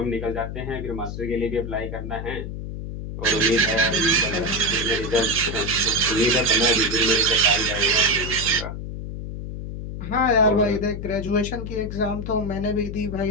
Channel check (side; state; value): left; noise; hum, 7 dB below the sound